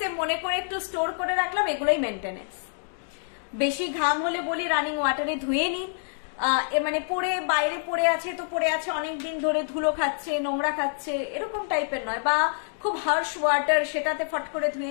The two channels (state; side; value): silent; right; digital silence